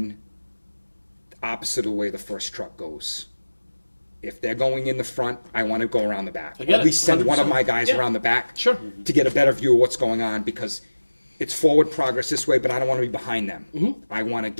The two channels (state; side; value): inverted; both; correlation -1.00